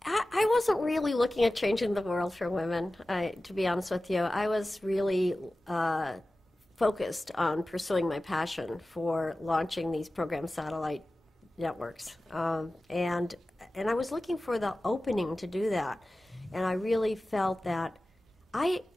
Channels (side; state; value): both; normal; correlation 0.96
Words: I wasn't really looking at changing the world for women, to be honest with you. I was really focused on pursuing my passion for launching these program satellite networks. And I was looking for the opening to do that. And I really felt that I